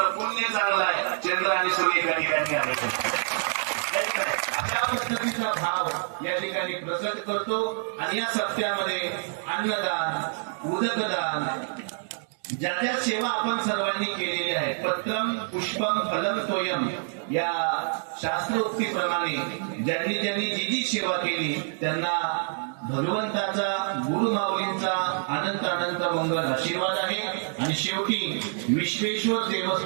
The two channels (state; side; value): silent; left; 60 dB below the other